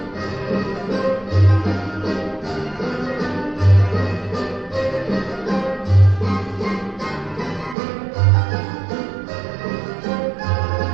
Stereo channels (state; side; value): drops out; left; at 7.8 s